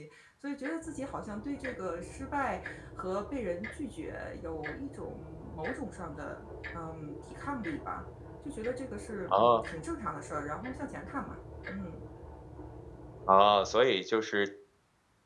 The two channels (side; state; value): both; identical; correlation 1.00